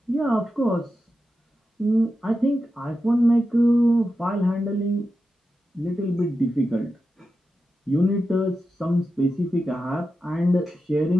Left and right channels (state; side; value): normal; both; correlation 0.90